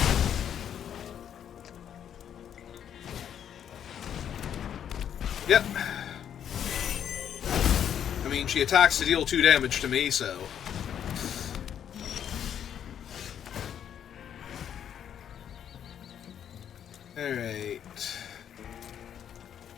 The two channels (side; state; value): right; quieter; 9.2 dB